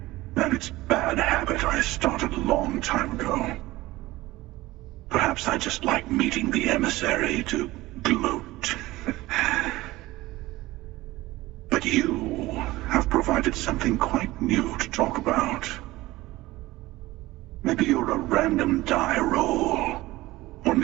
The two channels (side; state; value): left; quieter; 18.5 dB